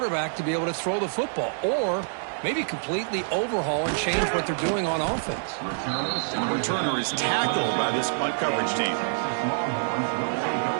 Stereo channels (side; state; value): left; silent; digital silence